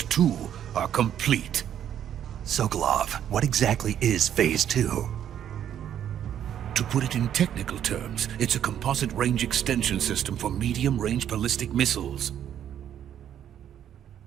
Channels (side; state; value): left; quieter; 10.0 dB